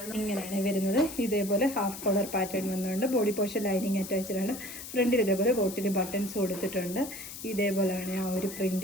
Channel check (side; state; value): left; noise; hiss, 11 dB below the sound